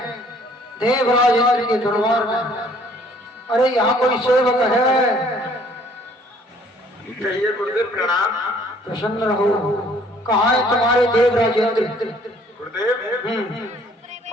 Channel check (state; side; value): normal; both; correlation 0.59